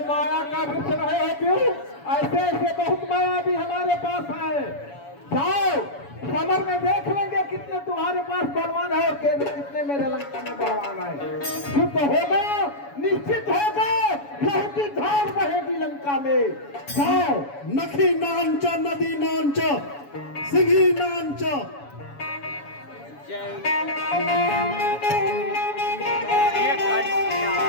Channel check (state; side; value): late; right; 7.1 ms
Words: माया का वृक्ष रहे हो क्यों? ऐसे ऐसे बहुत माया भी हमारे पास है। जाओ समर में देख लेंगे कितने तुम्हारे पास बलवान है और कितने मेरे लंका में बलवान है। युद्ध होगा, निश्चित होगा, लहू की धार बहेगी लंका में। जाओ। नखी नांच नदी नांच सिंही नांच। जय